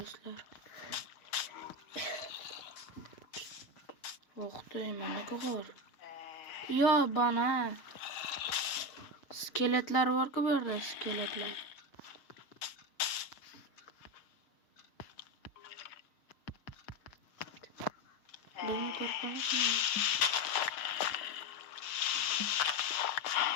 O'qdi, mana ko'g'or. Yo, bana. Skeletlar bor-ku bu yerda, skeletlar. Beni korkmasın.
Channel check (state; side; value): late; right; 6.5 ms